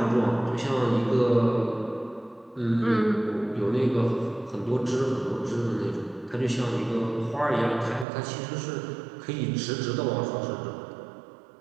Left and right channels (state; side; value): drops out; left; at 8.1 s